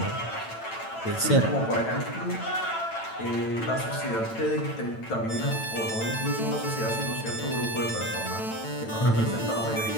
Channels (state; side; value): late; right; 9.0 ms